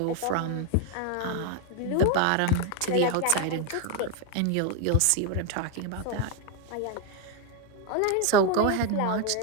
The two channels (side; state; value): both; different; correlation 0.01